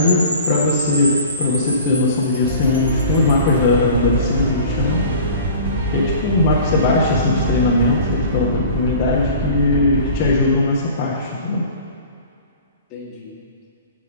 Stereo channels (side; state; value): both; inverted; correlation -0.43